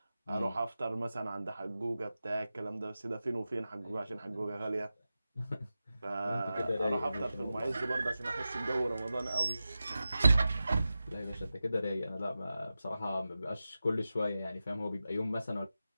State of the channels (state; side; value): inverted; both; correlation -0.93